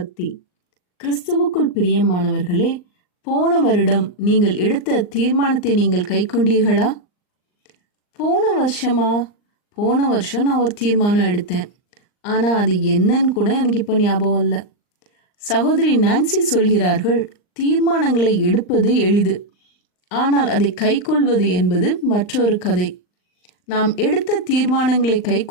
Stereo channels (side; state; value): right; late; 39 ms